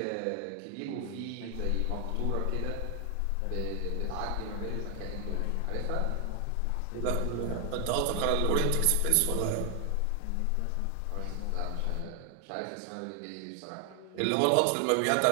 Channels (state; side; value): different; both; correlation 0.00